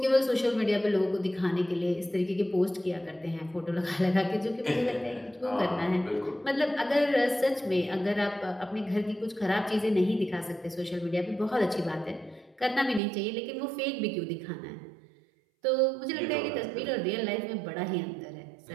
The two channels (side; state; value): left; drops out; at 13.0 s